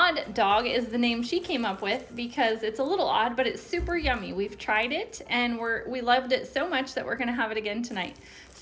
dog is the name she came up with because it's a little odd, but it's super yummy. We've tried it and we loved it so much that we're gonna have it again tonight.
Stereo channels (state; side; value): identical; both; correlation 1.00